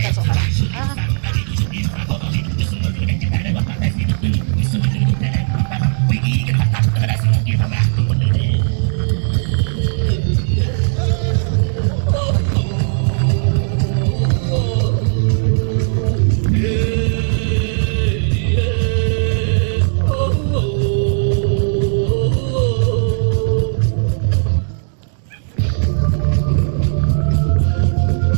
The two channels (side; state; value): left; silent; digital silence